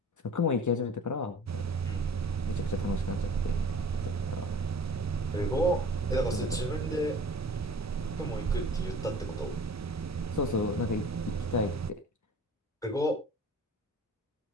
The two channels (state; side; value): normal; both; correlation 0.46